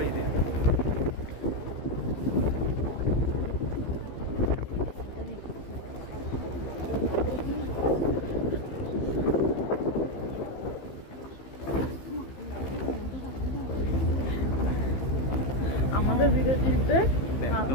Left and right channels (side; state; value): right; late; 15 ms